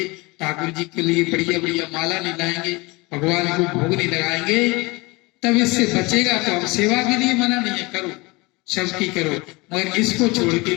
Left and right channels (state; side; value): quieter; right; 24.6 dB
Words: ठाकुर जी के लिए बढ़िया बढ़िया माला नहीं लाएंगे, भगवान को भोग नहीं लगाएंगे, तब इससे बचेगा। तो हम सेवा के लिए मना नहीं है, करो सबकी करो, मगर इसको छोड़ के